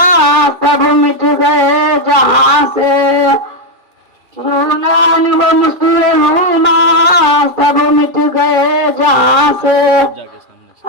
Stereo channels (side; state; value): left; late; 2.4 ms